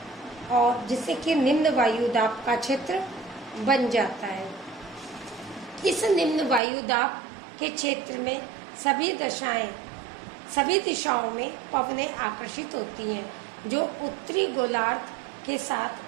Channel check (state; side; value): drops out; left; at 6.6 s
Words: और जिससे कि निम्न वायुदाब का क्षेत्र बन जाता है। इस निम्न वायुदाब के क्षेत्र में सभी दिशाओं में पवनें आकर्षित होती हैं, जो उत्तरी गोलार्ध के